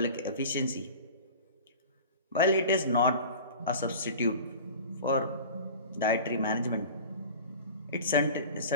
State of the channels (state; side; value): inverted; both; correlation -0.38